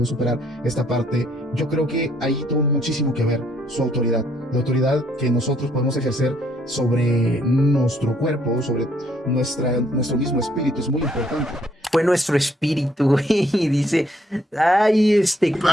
superar esta parte. Yo creo que ahí tuvo muchísimo que ver su autoridad. La autoridad que nosotros podemos ejercer sobre nuestro cuerpo, sobre nuestro mismo espíritu, es muy importante. Fue nuestro espíritu, güey. Y dice, ay,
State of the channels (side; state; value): both; normal; correlation 0.68